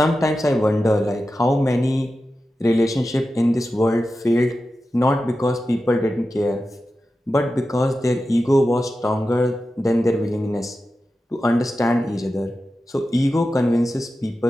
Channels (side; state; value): both; normal; correlation 0.92